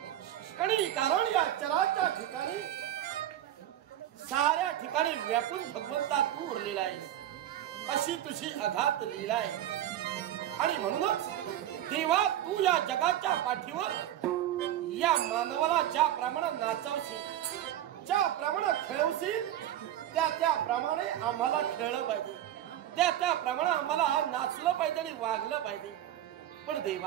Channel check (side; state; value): left; quieter; 12.1 dB